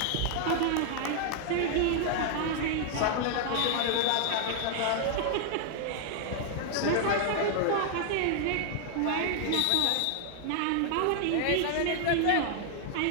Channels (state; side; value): different; both; correlation 0.00